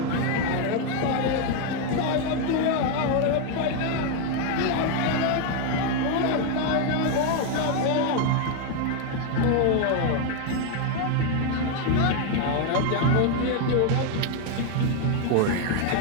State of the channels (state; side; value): different; both; correlation 0.01